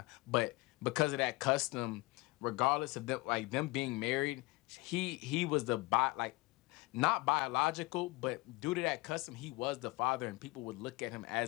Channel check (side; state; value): right; quieter; 22.2 dB